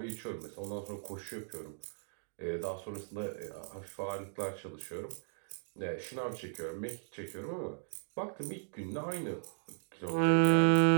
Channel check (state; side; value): silent; left; digital silence